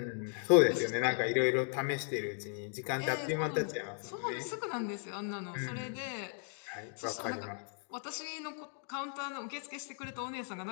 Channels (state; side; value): silent; right; 54 dB below the other